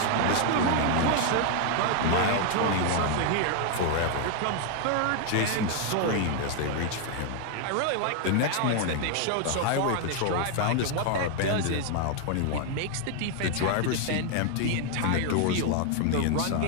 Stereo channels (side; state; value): both; different; correlation 0.00